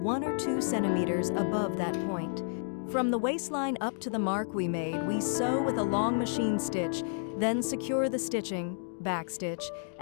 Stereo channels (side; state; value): right; silent; digital silence